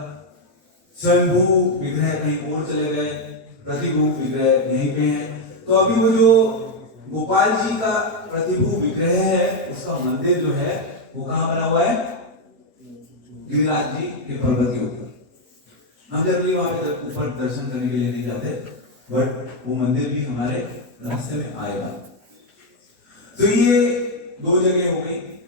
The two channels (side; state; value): both; normal; correlation 0.03